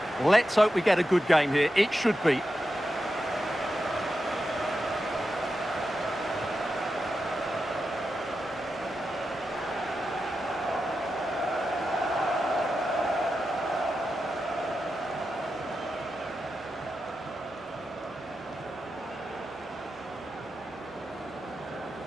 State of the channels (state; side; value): normal; both; correlation 0.89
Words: Let's hope we get a good game here. It should be.